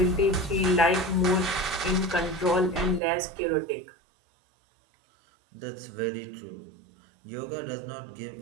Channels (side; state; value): left; drops out; at 3.0 s